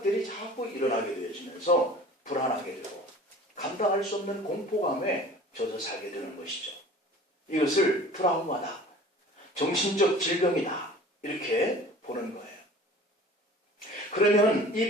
자꾸 일어나게 되어지면서 불안하게 되고 감당할 수 없는 공포감에 젖어 살게 되는 것이죠. 이것을 트라우마다, 정신적 질병이다, 이렇게 보는 거예요. 그러면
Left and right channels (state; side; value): normal; both; correlation 0.44